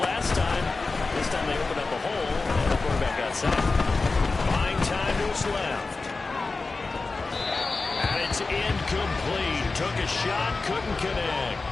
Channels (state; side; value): quieter; right; 3.8 dB